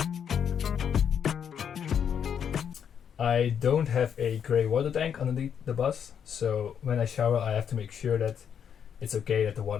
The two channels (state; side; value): quieter; right; 8.0 dB